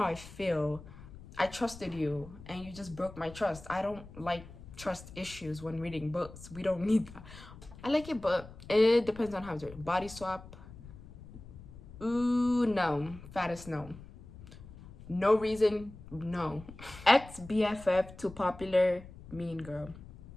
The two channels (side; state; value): left; noise; rumble, 17 dB below the sound